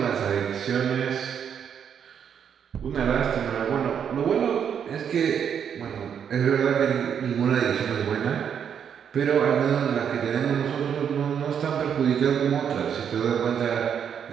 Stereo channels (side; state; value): left; quieter; 8.0 dB